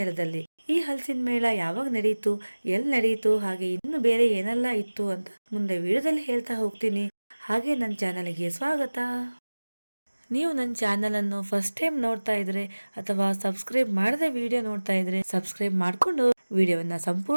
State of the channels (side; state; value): both; inverted; correlation -1.00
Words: ಈ ಹಲಸಿನ ಮೇಳ ಯಾವಾಗ ನಡೆಯಿತು, ಎಲ್ಲಿ ನಡೆಯಿತು, ಹಾಗೆ ಇನ್ನು ಬೇರೆ ಏನೆಲ್ಲ ಇತ್ತು ಅಂತ ಮುಂದೆ ವಿಡಿಯೋದಲ್ಲಿ ಹೇಳ್ತಾ ಹೋಗ್ತೀನಿ. ಹಾಗೆ ನನ್ನ ಚಾನಲ್ಗೆ ಸ್ವಾಗತ. ನೀವು ನನ್ನ ಚಾನಲ್ ಅನ್ನು ಫಸ್ಟ್ ಟೈಮ್ ನೋಡ್ತಾ ಇದ್ರೆ ಅಥವಾ ಸಬ್ಸ್ಕ್ರೈಬ್ ಮಾಡದೆ ವಿಡಿಯೋ ನೋಡ್ತಾ ಇದ್ರೆ ಸಬ್ಸ್ಕ್ರೈಬ್ ಮಾಡ್ಕೊಂಡು ವಿಡಿಯೋವನ್ನ